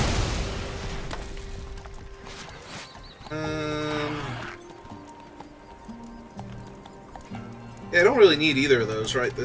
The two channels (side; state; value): both; identical; correlation 1.00